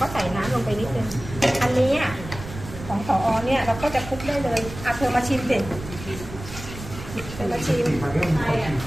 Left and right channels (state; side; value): noise; right; rumble, 12 dB below the sound